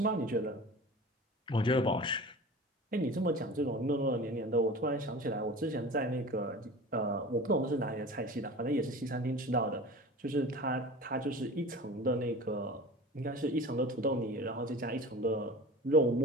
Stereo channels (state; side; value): normal; both; correlation 0.36